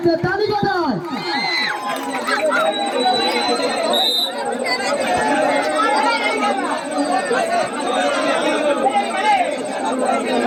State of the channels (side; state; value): both; identical; correlation 1.00